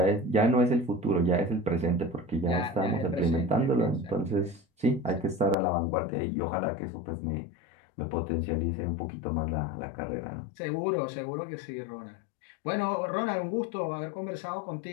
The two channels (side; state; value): right; drops out; at 5.6 s